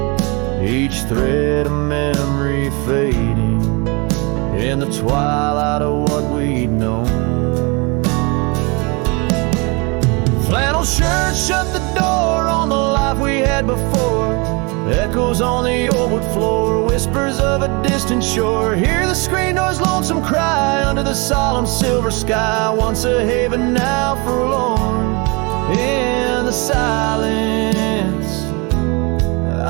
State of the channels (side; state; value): left; quieter; 29.4 dB